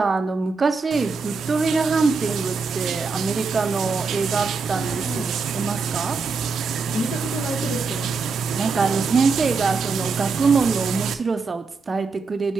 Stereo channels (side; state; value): left; quieter; 4.6 dB